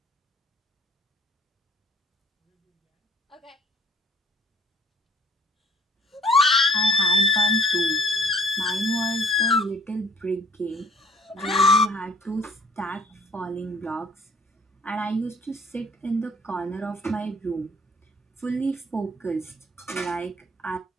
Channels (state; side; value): normal; both; correlation 0.57